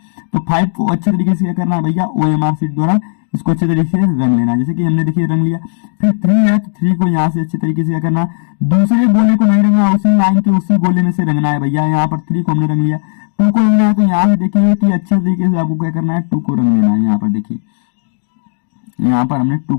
तो 5 को अच्छे तरीके से क्या करना है भैया, OMR शीट द्वारा इसको अच्छे तरीके से रंग लेना है। जैसे कि हमने देखिए रंग लिया। फिर 3 है तो 3 को यहाँ से अच्छे तरीके से क्या करना, दूसरे गोले को नहीं रंगना, उसी लाइन के उसी गोले में से रंगना है भैया। यहाँ पर 3 को हमने रंग लिया। 2 को रंगना है तो यहाँ से देखिए कि अच्छे तरीके से आपको क्या करना है, 2 को रंग देना है। यहाँ पर देखिए यहाँ पर हमने 2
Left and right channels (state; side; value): silent; right; digital silence